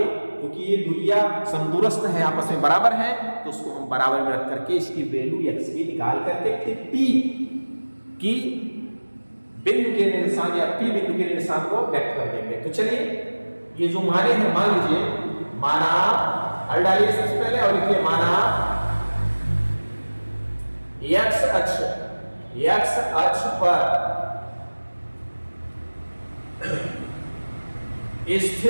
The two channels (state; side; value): inverted; both; correlation -1.00